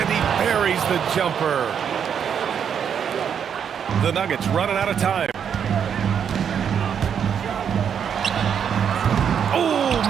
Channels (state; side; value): quieter; left; 7.9 dB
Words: he buries the jumper. The Nuggets running out of time.